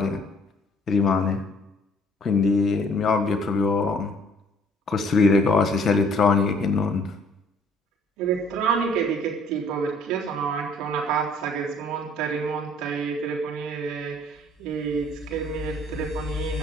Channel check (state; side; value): normal; both; correlation 0.58